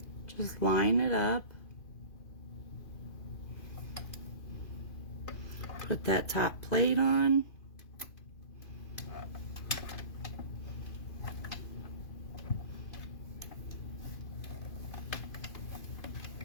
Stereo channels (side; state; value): right; late; 2.5 ms